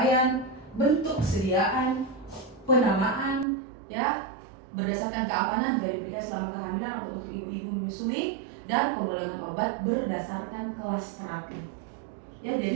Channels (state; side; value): drops out; left; at 3.5 s